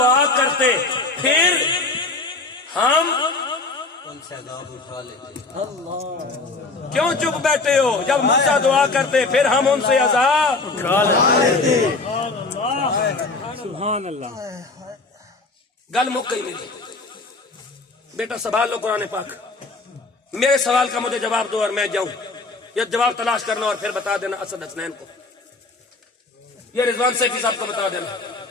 کرتے پھر ہم ان سے عذاب اٹھا لیتے. کیوں چپ بیٹھے ہو؟ جب موسیٰ دعا کرتے پھر ہم ان سے عذاب سبحان اللہ. گل مک گئی میری. بیٹا سوال لو قرآن پاک. میرے سوال کا مجھے جواب دو اور میں جاؤں, یا جواب تلاش کرنا اور پھر بتا دینا اسد حسنین کو, یہ رضوان سیفی صاحب کو بتا دینا,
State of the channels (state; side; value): quieter; right; 3.6 dB